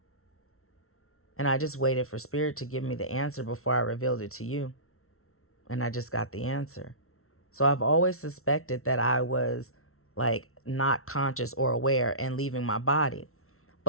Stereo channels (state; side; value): late; right; 0.63 ms